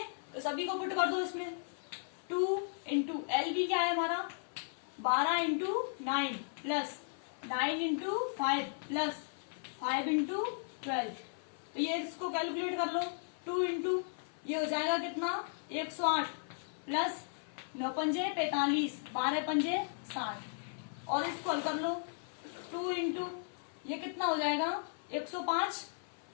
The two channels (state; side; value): silent; right; 54 dB below the other